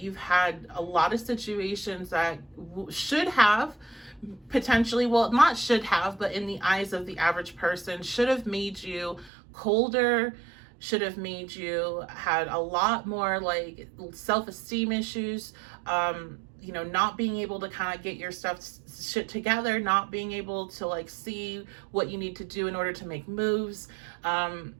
had a lot of situations that should have potentially, well, not should have, but in the eyes of the average person, should have made you colder, should have made you had a lot more like self-esteem issues, you know, not being able to kind of get your shit together, not being able to like see what you need to do in order to make moves.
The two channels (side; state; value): left; drops out; at 9.3 s